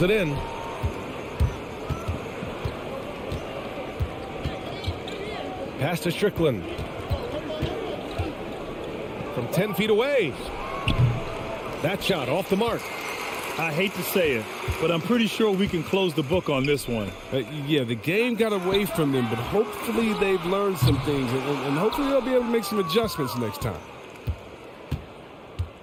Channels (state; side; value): identical; both; correlation 1.00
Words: it in. Pass to Strickland. From 10 feet away. That shot off the mark. I hate to say it, but I'm pretty sure we can close the book on this one. Yeah, the game got away from them, but hopefully they've learned some things, and hopefully they'll be able to make some adjustments next time.